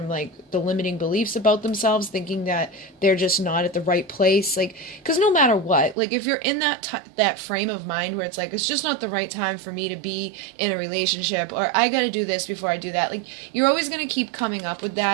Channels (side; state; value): left; drops out; at 6.0 s